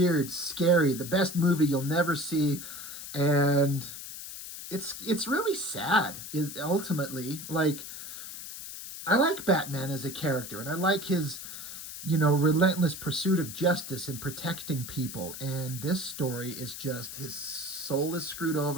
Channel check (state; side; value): noise; left; hiss, 10 dB below the sound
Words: scary, the best movie you'll never see. And it's really sad, is ultimately. Like, I like Batman as a character, and I like his, relentless pursuit of justice and protecting people. And this story is just, his soul is screwed